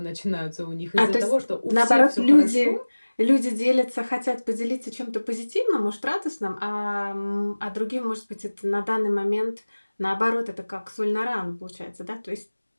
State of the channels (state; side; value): inverted; both; correlation -1.00